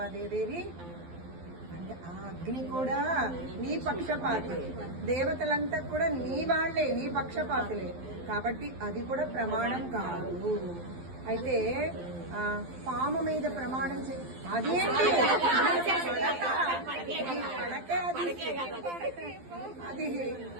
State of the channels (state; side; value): late; left; 12 ms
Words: దేవేరి అంటే ఆ అగ్ని కూడా నీ పక్షపాతి, దేవతలంతా కూడా నీ వాళ్లే, నీ పక్షపాతులే, కాబట్టి అది కూడా ప్రమాణం కాదు. అయితే పాము మీద ప్రమాణం అదేంటి